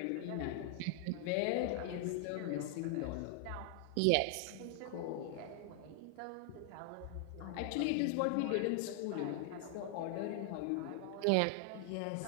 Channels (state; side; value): different; both; correlation 0.00